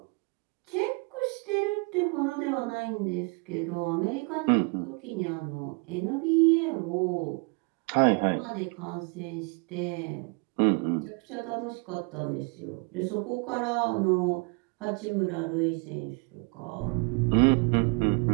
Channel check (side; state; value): left; quieter; 32.7 dB